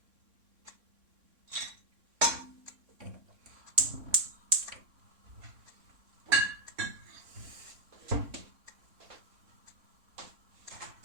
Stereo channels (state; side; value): late; left; 3.6 ms